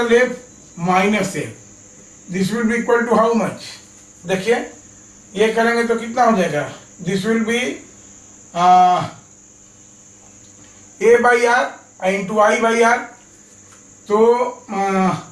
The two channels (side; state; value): both; identical; correlation 1.00